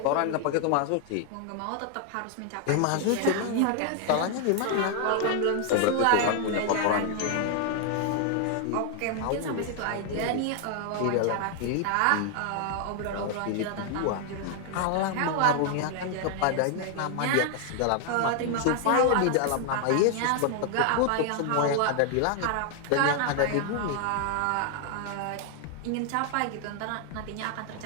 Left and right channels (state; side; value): different; both; correlation 0.00